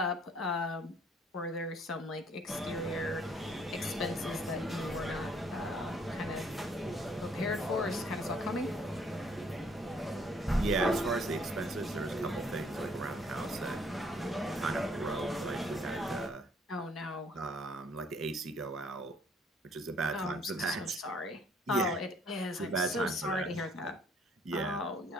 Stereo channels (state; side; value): normal; both; correlation 0.62